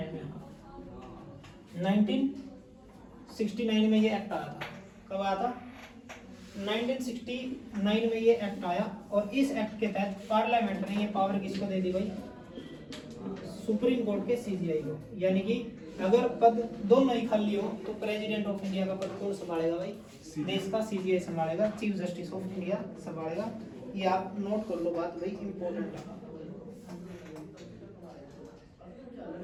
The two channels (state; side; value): identical; both; correlation 1.00